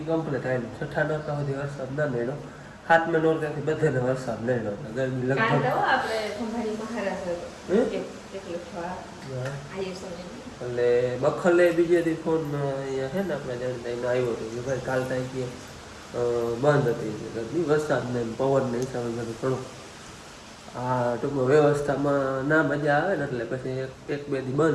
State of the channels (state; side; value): identical; both; correlation 1.00